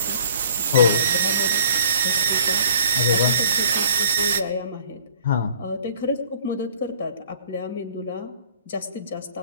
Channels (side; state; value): both; inverted; correlation -0.53